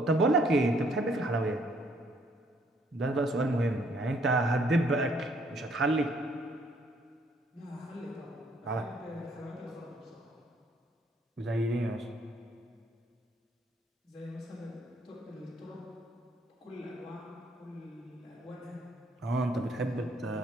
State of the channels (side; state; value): both; normal; correlation 0.67